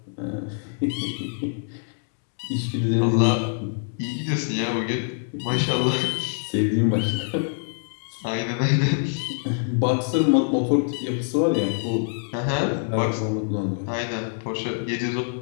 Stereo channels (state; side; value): silent; right; digital silence